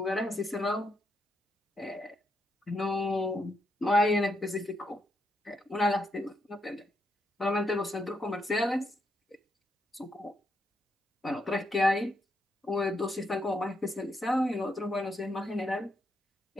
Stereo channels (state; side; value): normal; both; correlation 0.79